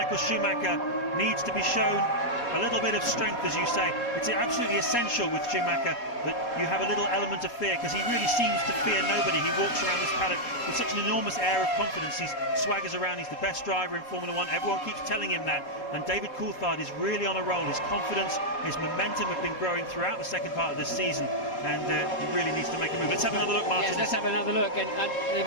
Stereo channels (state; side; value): late; right; 4.2 ms